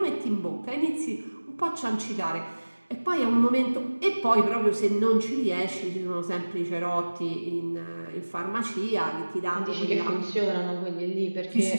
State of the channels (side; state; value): both; inverted; correlation -1.00